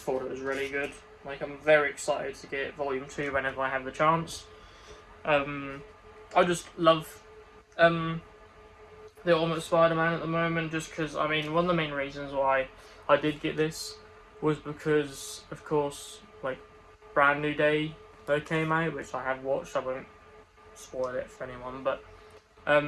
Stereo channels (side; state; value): both; identical; correlation 1.00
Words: it was really good. I'm very excited to get Volume 2 whenever I have the chance. I just love the Ultimate Spider-Man at the moment, just because, one of the main reasons why I did get this was because, of course, Brand New Day that came out, which I have watched. I won't spoil it for anyone, but